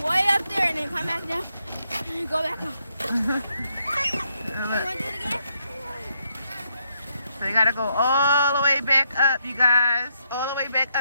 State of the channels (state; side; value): inverted; both; correlation -0.77